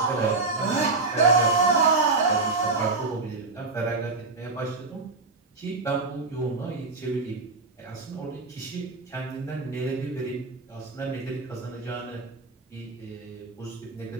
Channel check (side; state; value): left; quieter; 3.7 dB